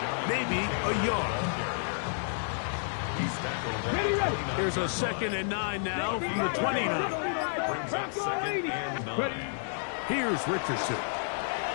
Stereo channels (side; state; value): right; silent; 58 dB below the other